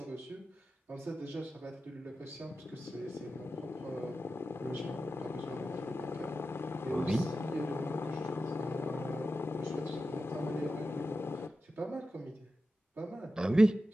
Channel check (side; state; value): both; normal; correlation 0.92